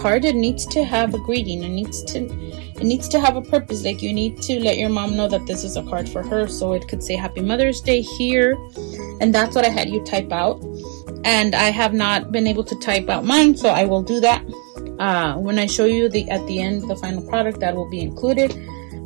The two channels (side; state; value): left; quieter; 37.5 dB